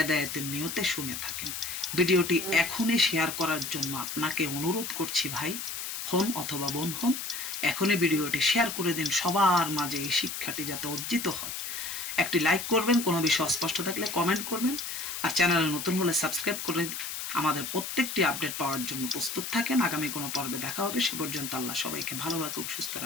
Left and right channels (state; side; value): noise; left; hiss, 5 dB below the sound